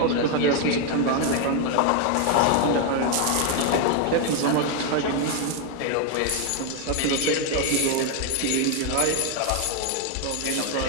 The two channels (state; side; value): different; both; correlation 0.01